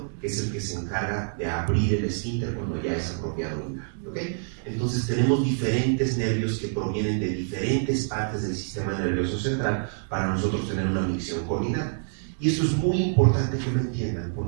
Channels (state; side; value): silent; left; digital silence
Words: que es el que se encarga de abrir el esfínter cuando ya es apropiado orinar, ¿okay? Entonces tenemos diferentes nervios que provienen de diferentes partes del sistema nervioso central para nosotros tener una micción coordinada. Y esto es muy importante que lo entiendan,